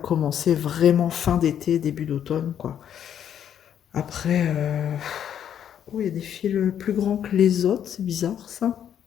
vraiment fin d'été, début d'automne, quoi. Après, oh, il y a des fils plus grands que les autres, c'est bizarre, ça.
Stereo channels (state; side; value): quieter; right; 9.4 dB